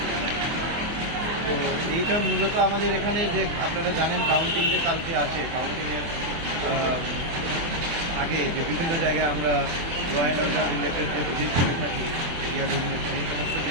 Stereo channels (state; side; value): late; left; 24 ms